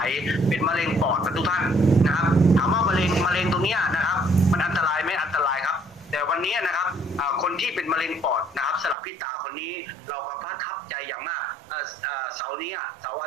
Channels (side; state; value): left; drops out; at 9.0 s